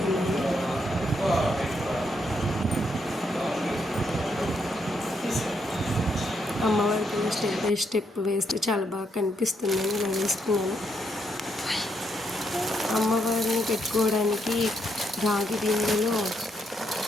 అమ్మవారికి స్టెప్ బై స్టెప్ వేస్తే చాలా బాగా కనిపిస్తుందని ఇలా వేసుకున్నాను. అమ్మవారిని పెట్టుకోవడానికి రాగి బిందెలో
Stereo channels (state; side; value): normal; both; correlation 0.77